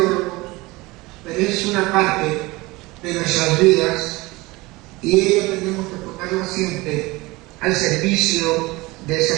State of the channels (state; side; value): quieter; left; 21.9 dB